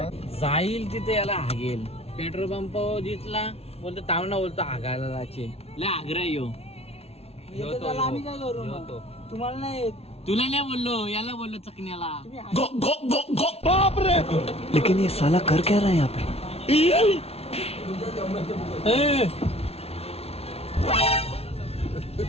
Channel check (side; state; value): right; late; 0.30 ms